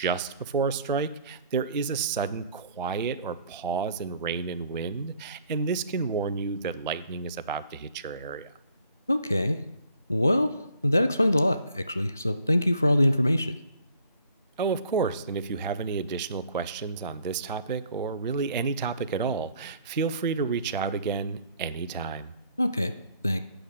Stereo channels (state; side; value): inverted; both; correlation -0.59